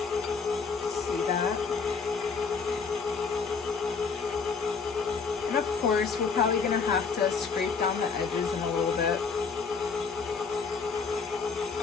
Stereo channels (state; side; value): quieter; right; 5.2 dB